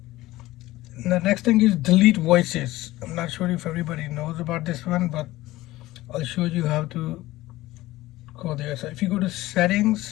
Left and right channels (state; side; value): quieter; right; 17.5 dB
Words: the next thing is delete voices. I'm not sure if everybody knows about this one, but I'll show you how to go there. So if you go to